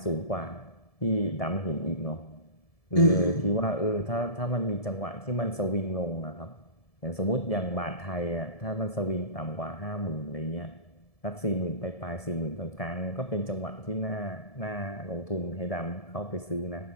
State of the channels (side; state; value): right; late; 1.7 ms